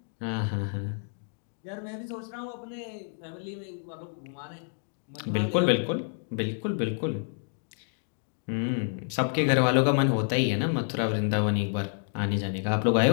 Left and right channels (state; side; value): silent; right; 59 dB below the other